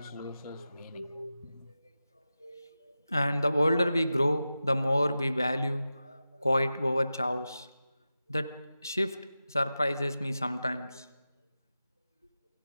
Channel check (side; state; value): both; inverted; correlation -0.93